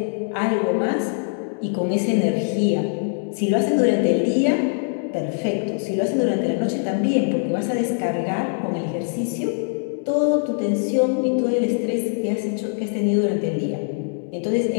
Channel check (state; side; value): silent; right; digital silence